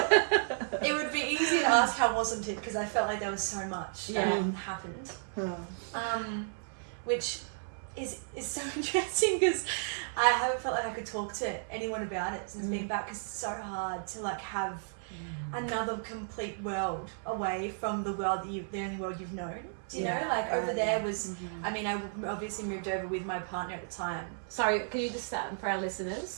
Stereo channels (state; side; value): silent; left; 56 dB below the other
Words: It would be easy to ask how wasn't it, because I felt like there was so much that happened. Which is so interesting, because I haven't felt like I could talk to anyone about it since being back, because it's so hard to like have another complete world away from the world that the only world you've known. Do you know? Like over there was, I mean, I obviously moved over with my partner at the time. Sorry, can you just start for our